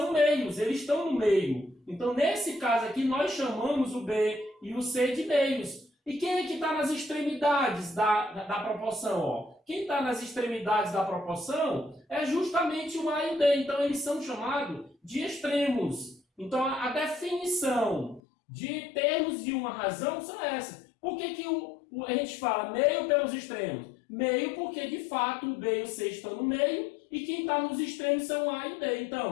meios, eles estão no meio. Então, nesse caso aqui, nós chamamos o B e o C de meios. E quem é que está nas extremidades da proporção? Ó? Quem está nas extremidades da proporção é justamente o A e o D. Então, eles são chamados de extremos. Então, a definição de termos de uma razão são essas. Por que a gente fala meio pelos extremos? Meio porque, de fato, o B e o C estão no meio e quem está nos extremos são o A e o D.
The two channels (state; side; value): drops out; right; at 18.2 s